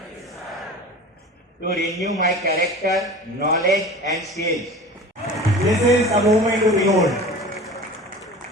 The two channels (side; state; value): both; normal; correlation 0.37